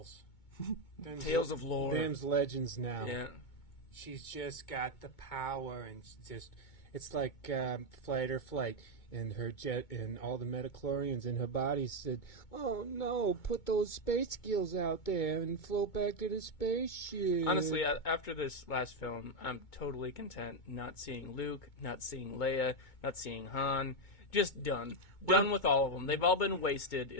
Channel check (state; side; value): late; right; 2.2 ms